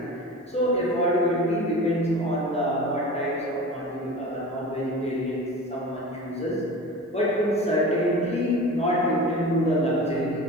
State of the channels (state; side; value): normal; both; correlation 0.34